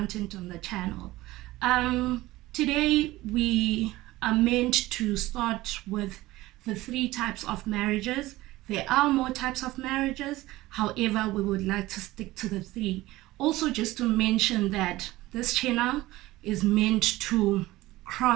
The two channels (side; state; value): left; quieter; 18.0 dB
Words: on the channel. Today we are meant to start with the 3 types of marriages. There are more types of marriages, however we would like to stick to the 3. Also, just to mention that this channel is meant to